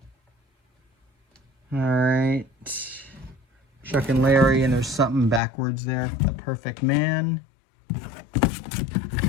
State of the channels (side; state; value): right; drops out; at 5.4 s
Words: All right. Chuck and Larry, and there's something backwards there. The Perfect Man.